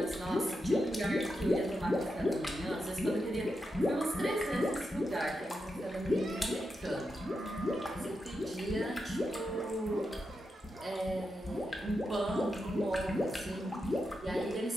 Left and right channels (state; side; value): normal; both; correlation 0.87